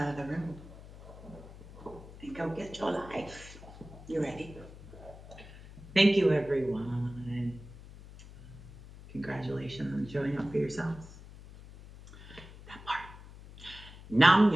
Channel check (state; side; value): noise; left; hum, 17 dB below the sound